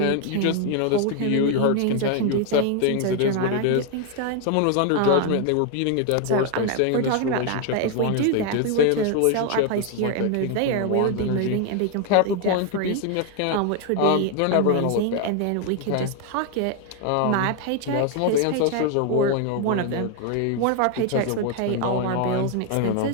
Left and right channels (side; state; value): both; different; correlation 0.01